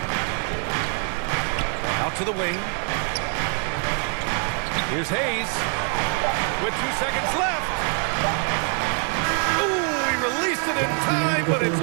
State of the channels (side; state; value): left; quieter; 37.5 dB